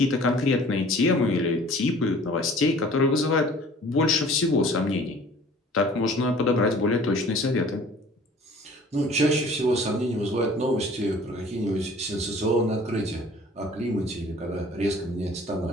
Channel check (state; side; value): normal; both; correlation 0.50